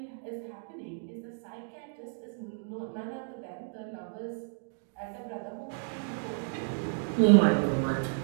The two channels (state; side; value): silent; left; digital silence